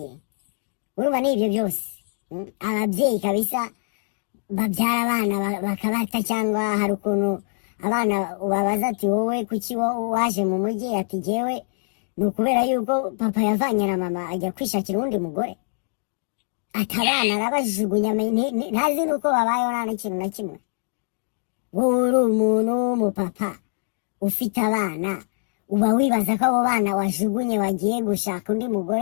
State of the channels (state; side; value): silent; right; digital silence